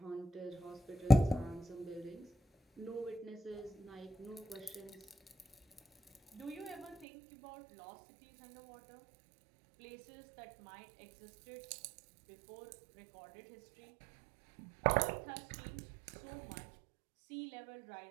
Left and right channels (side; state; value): left; drops out; at 7.1 s